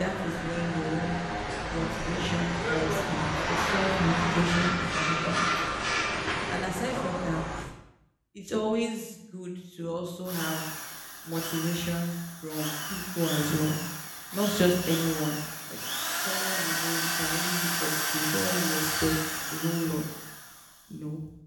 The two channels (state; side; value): identical; both; correlation 1.00